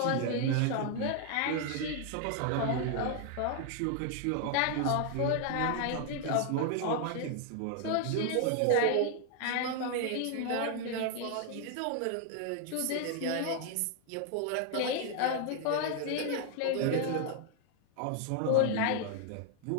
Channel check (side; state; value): both; different; correlation 0.00